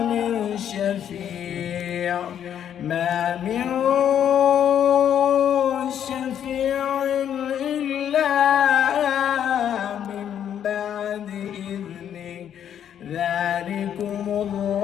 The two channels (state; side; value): quieter; right; 9.5 dB